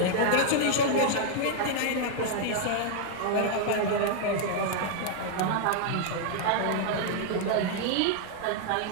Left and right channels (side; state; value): both; different; correlation 0.00